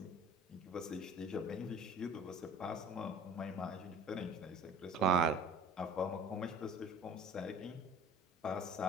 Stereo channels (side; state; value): both; normal; correlation 0.45